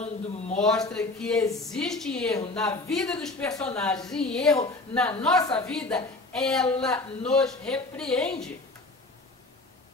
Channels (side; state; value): right; quieter; 3.1 dB